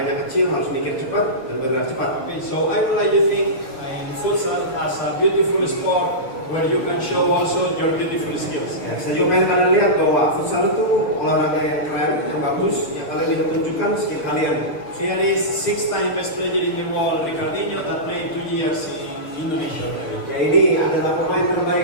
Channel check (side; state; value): right; late; 6.3 ms